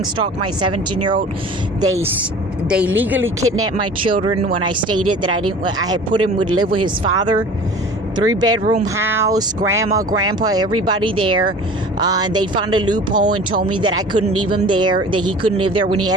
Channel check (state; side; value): normal; both; correlation 0.42